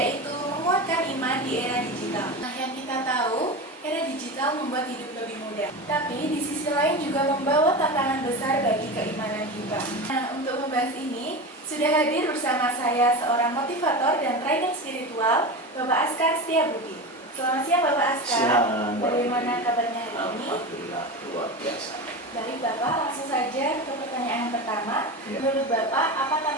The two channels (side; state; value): both; normal; correlation 0.25